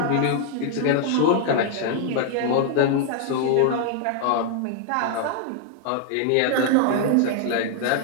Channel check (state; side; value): different; both; correlation 0.00